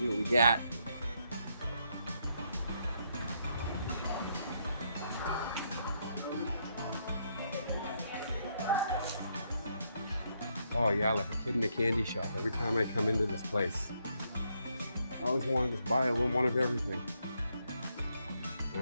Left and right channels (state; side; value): inverted; both; correlation -0.76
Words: what we got. Oh yeah, like a kid in a candy shop. Every time I come into this place, I always want to just buy a little one of everything.